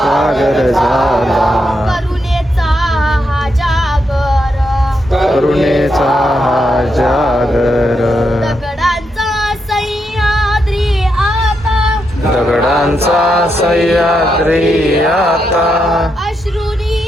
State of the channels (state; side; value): normal; both; correlation 0.82